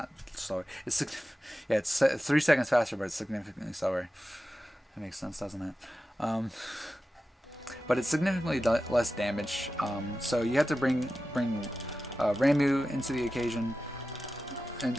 slower. Yeah, it's 3 seconds faster, but it's significantly slower. That makes sense, doesn't it? But it's significantly less damage. So you have to bring Ramuh into the occasion and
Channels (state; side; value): normal; both; correlation 0.93